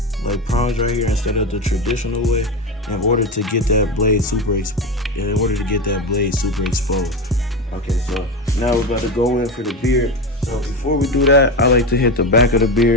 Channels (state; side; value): normal; both; correlation 0.19